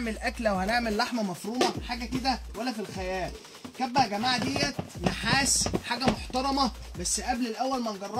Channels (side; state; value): both; identical; correlation 1.00